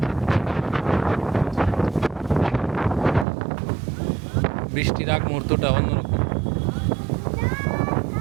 বৃষ্টির আগ মুহূর্তটা অন্যরকম।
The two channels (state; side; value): drops out; left; at 3.2 s